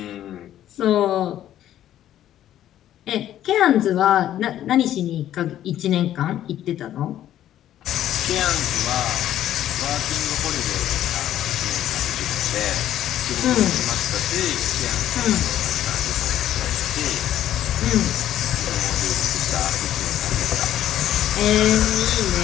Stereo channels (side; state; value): right; quieter; 11.9 dB